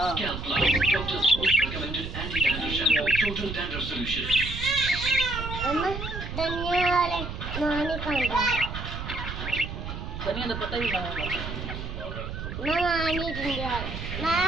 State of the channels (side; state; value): right; noise; rumble, 7 dB below the sound